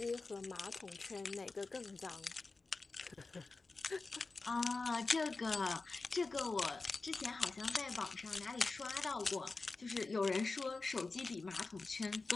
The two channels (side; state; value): right; quieter; 3.7 dB